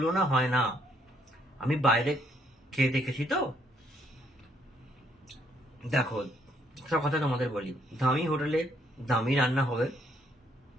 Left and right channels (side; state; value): both; normal; correlation 0.69